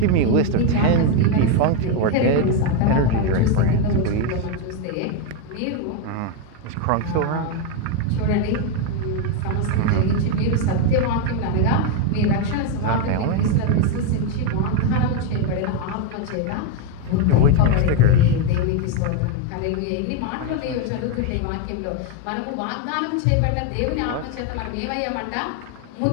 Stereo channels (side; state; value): both; different; correlation 0.02